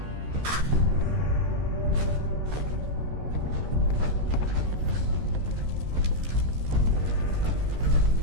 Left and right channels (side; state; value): left; late; 13 ms